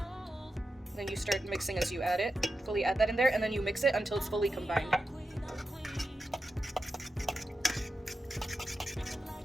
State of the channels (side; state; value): both; normal; correlation 0.90